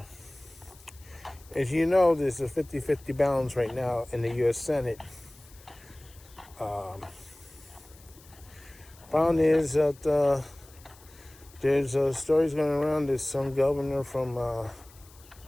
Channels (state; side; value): noise; left; hiss, 24 dB below the sound